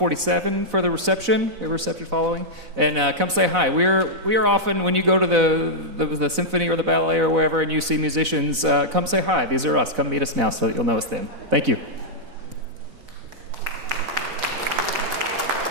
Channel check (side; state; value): left; late; 4.0 ms